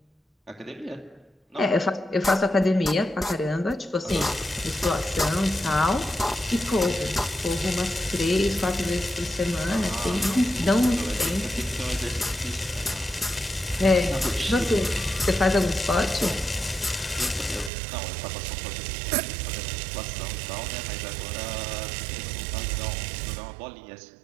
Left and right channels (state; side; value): drops out; left; at 17.7 s